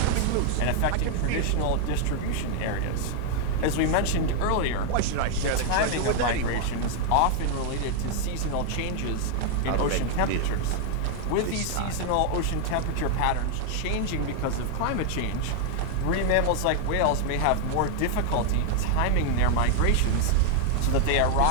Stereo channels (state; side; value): different; both; correlation 0.00